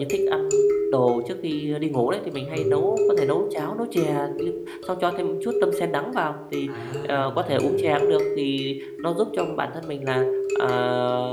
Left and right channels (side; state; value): both; identical; correlation 1.00